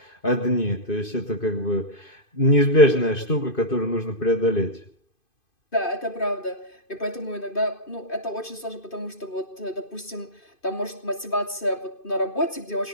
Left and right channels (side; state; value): right; late; 2.5 ms